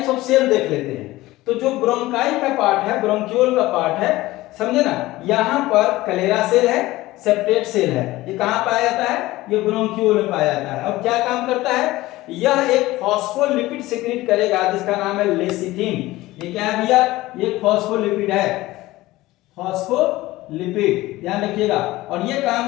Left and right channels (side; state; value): right; quieter; 18.1 dB